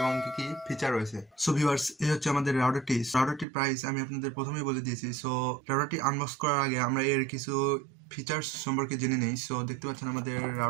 কি ফিচার রয়েছে। সো ভিউয়ার্স, এই হচ্ছে আমাদের রাউটারটির প্রাইস আমি আপনাদের প্রথমেই বলে দিয়েছি। সো রাউটারটি আনবক্স করার আগে আমরা এর কিছু ফিচার্স সম্পর্কে জেনে নেই। সো দেখতে পাচ্ছেন আমাদের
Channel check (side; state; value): left; drops out; at 3.5 s